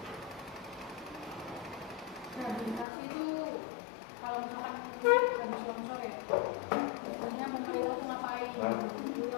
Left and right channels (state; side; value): drops out; right; at 2.9 s